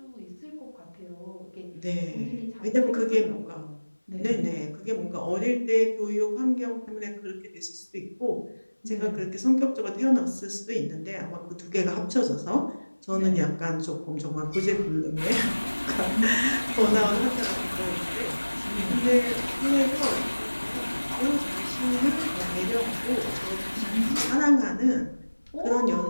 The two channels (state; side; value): inverted; both; correlation -1.00